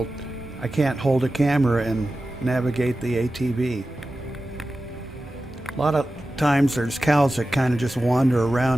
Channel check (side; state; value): both; normal; correlation 0.94